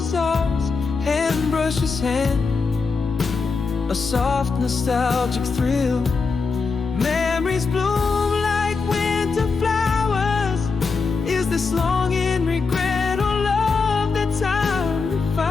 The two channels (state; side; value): quieter; right; 4.6 dB